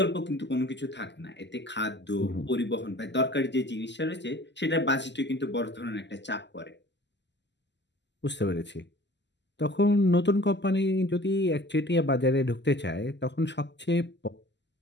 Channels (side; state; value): right; late; 0.51 ms